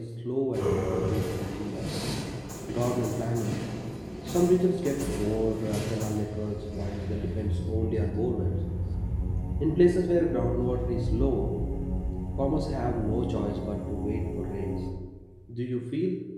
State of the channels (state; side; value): identical; both; correlation 1.00